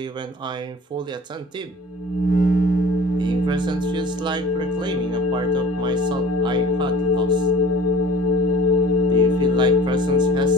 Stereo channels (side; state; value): both; normal; correlation 0.45